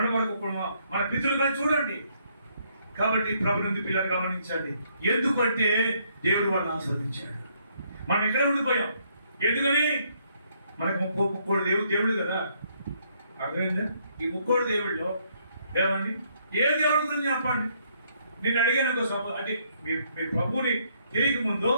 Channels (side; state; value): both; inverted; correlation -0.70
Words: వరకు మన పితృలుగా చూడండి. కాబట్టి ప్రభునందు పిల్లలు గమనించండి. ఎందుకంటే దేవుడు వాళ్ళని ఆశీర్వదించాడు. మనం ఇక్కడే ఉండిపోయాం. ఎందుకని? మనకు 30 దేవుడు కదా. అర్థమైందా? ఈ 30 దేవుళ్ళలో ఏమండి ఏ దేవుడి గురించి చెప్పండి. నేను అడిగాను అంటే మీ ప్రభుని తెలియక ముందు